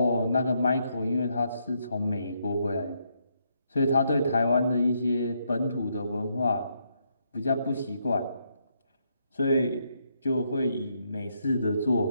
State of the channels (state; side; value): inverted; both; correlation -0.77